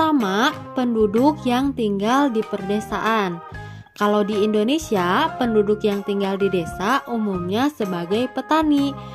penduduk yang tinggal di perdesaan. Kalau di Indonesia, penduduk yang tinggal di desa umumnya sebagai petani.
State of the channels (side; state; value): both; identical; correlation 1.00